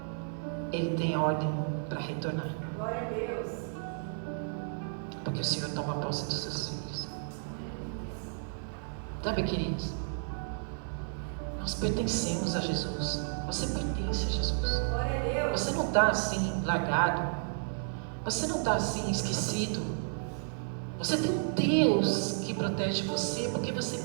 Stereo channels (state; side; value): silent; left; 56 dB below the other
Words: Ele tem ordem para retornar. Glória a Deus. Porque o Senhor toma posse dos seus filhos. Sabe, queridos? Nós pertencemos a Jesus. Você pertence a Jesus. Glória a Deus. Você não está assim, largado. Você não está assim, esquecido. Você tem um Deus que protege você, porque você